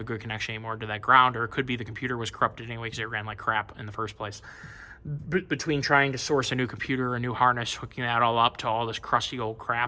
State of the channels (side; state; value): both; identical; correlation 1.00